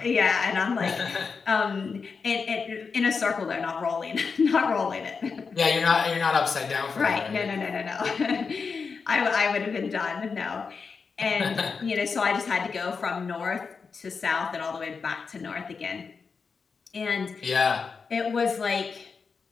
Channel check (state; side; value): quieter; right; 5.2 dB